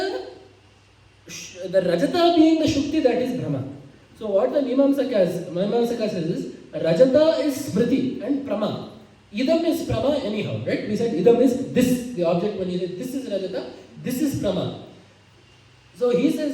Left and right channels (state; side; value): identical; both; correlation 1.00